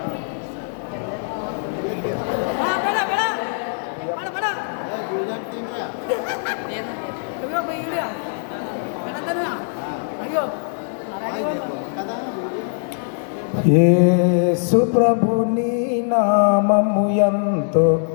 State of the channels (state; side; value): silent; right; digital silence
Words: యేసు ప్రభుని నామము ఎంతో